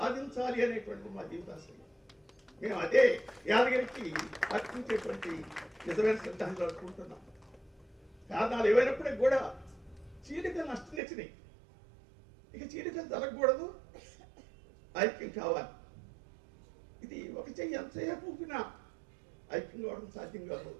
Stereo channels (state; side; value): drops out; left; at 11.0 s